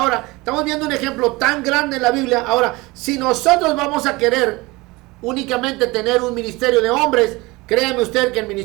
estamos viendo un ejemplo tan grande en la Biblia. Ahora, si nosotros vamos a querer únicamente tener un ministerio de hombres, créame usted que el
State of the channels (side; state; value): left; quieter; 22.7 dB